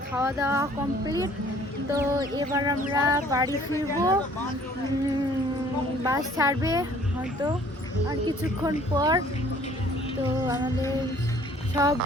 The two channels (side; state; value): both; normal; correlation 0.56